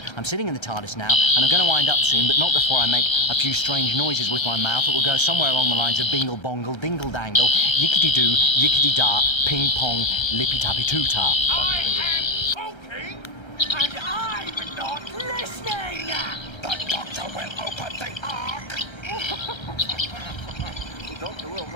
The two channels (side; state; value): right; late; 1.3 ms